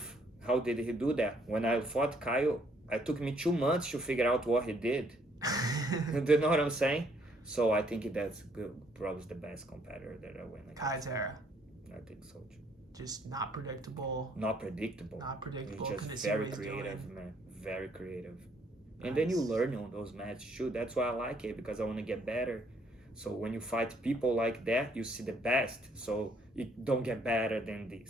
How did he do that? When I fought Kyle, it took me 2 months to figure out what he did. Do you know what I'm saying? So I think that's good. Probably the best competitor that I went against. Kayatera. I think so. Just not predictable. Not predictable. He's just very creative, man. Very creative. Nice. And then you learn on those matches too. That's why I like it, because I want to get better. So when you fight people like that, you see the best. So you don't get better than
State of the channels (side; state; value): both; normal; correlation 0.67